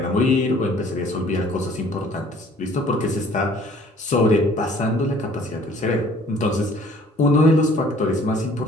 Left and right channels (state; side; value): normal; both; correlation 0.55